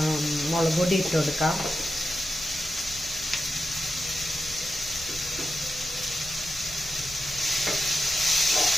മുളക് പൊടി ഇട്ട് കൊടുക്കാം.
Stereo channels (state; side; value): noise; left; rumble, 17 dB below the sound